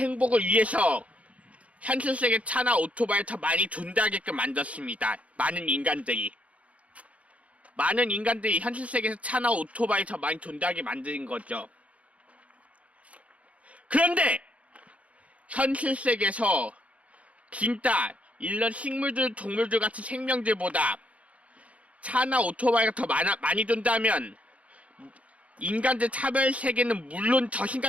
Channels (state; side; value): late; left; 0.065 ms